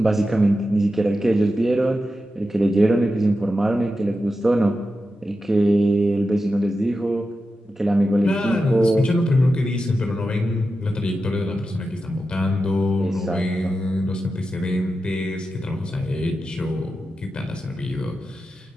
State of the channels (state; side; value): normal; both; correlation 0.91